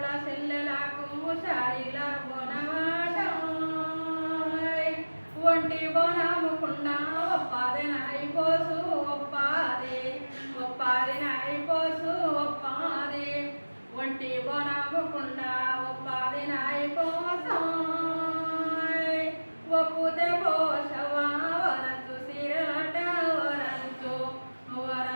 చెల్లెలకు శారీల బోనమాట ఒంటి బోనముకుండా ఒప్పాది నాయి పోసు ఒప్పాది నాయి పోసు ఒప్పాది ఒంటి బోనముకుండా ఒప్పాది నాయి పోసు ఒప్పుతే పోషవా వరంచు సీరలట వరంచు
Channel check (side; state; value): both; inverted; correlation -1.00